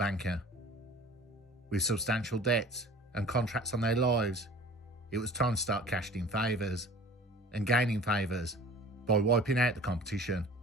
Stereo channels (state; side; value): normal; both; correlation 0.44